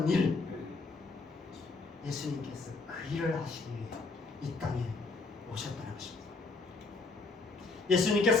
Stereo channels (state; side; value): quieter; right; 3.8 dB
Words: 일, 예수님께서 그 일을 하시기 위해 이 땅에 오셨다는 것입니다.